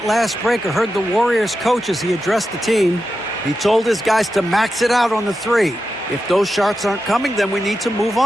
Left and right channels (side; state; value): both; normal; correlation 0.90